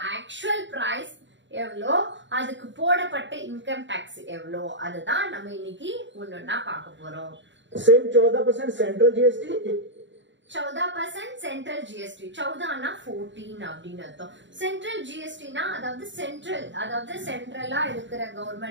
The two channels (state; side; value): late; left; 0.54 ms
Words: ஆக்சுவல் பிரைஸ் எவ்வளோ, அதுக்கு போடப்பட்ட இன்கம் டாக்ஸ் எவ்வளோ, அதுதான் நம்ம இன்னைக்கு ஒன்னொன்னா பார்க்க போறோம். 14% சென்ட்ரல் ஜிஎஸ்டி, 14% சென்ட்ரல் ஜிஎஸ்டி. 14னா 14 அப்படின்னு அர்த்தம். சென்ட்ரல் ஜிஎஸ்டினா அதாவது சென்ட்ரலா இருக்கிற